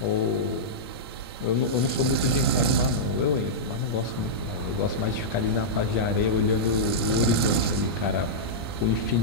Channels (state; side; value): normal; both; correlation -0.11